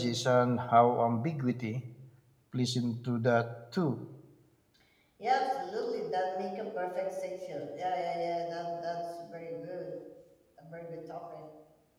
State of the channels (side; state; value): both; identical; correlation 1.00